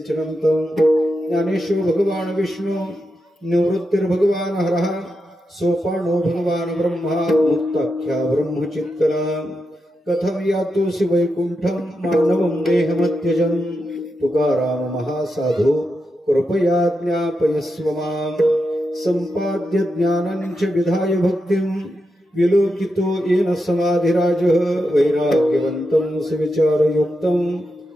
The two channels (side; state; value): both; normal; correlation 0.87